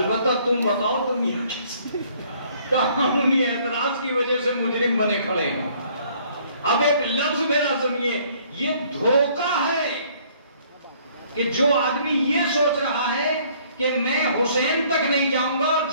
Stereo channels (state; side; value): inverted; both; correlation -0.61